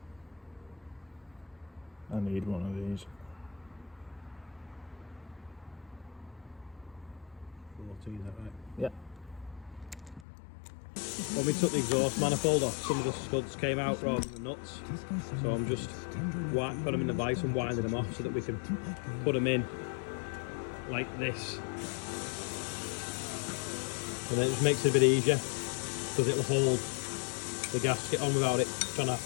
I need one of these. 14, is that right? Yeah. When we took the exhaust manifold off, some of the studs came out rather than the nuts. So I'm just putting them in the vise and winding them off so that we can put them in like this. And then it just makes it a bit easier because it'll hold the gasket on without it trying to have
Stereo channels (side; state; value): right; drops out; at 10.2 s